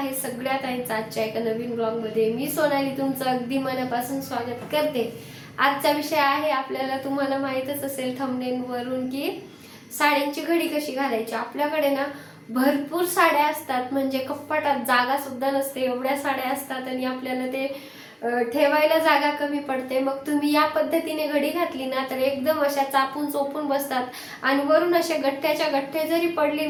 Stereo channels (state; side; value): identical; both; correlation 1.00